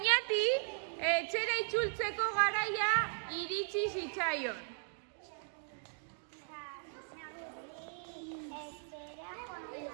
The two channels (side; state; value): left; silent; 53 dB below the other